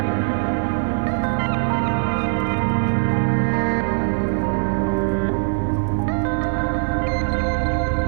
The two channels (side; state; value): left; silent; digital silence